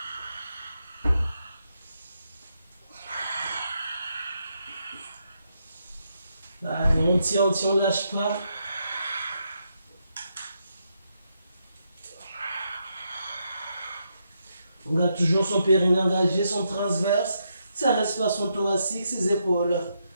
Allez, on tient, on ne lâche pas. On garde toujours son périnée engagé, son transverse, sa respiration thoracique, ses épaules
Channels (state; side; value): inverted; both; correlation -0.80